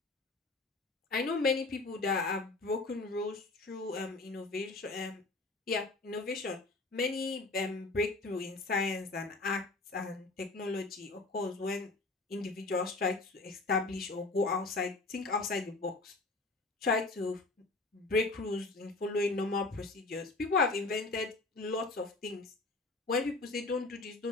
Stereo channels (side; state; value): right; quieter; 3.3 dB